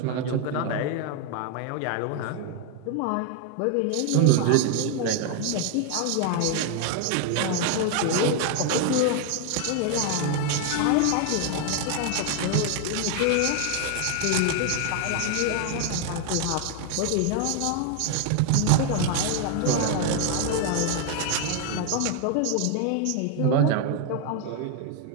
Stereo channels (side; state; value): both; different; correlation 0.00